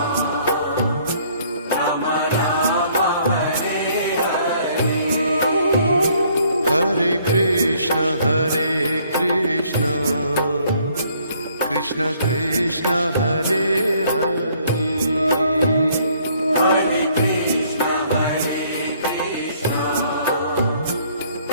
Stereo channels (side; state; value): both; inverted; correlation -0.63